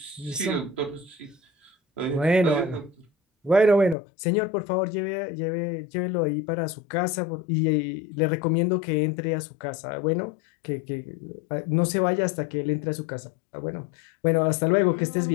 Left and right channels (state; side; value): drops out; right; at 4.0 s